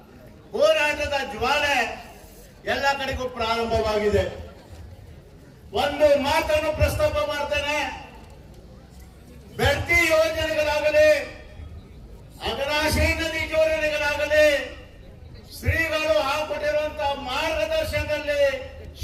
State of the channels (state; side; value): identical; both; correlation 1.00